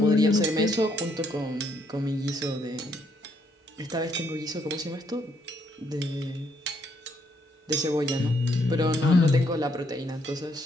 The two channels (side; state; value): both; normal; correlation 0.72